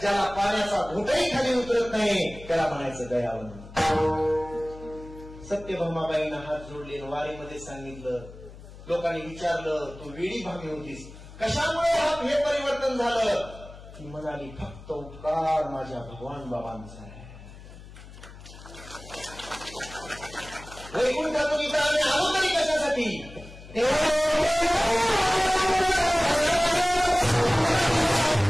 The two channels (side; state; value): left; noise; hum, 17 dB below the sound